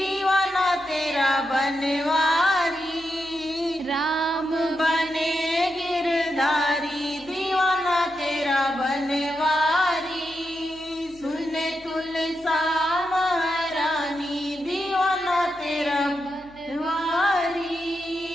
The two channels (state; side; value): noise; left; hum, 26 dB below the sound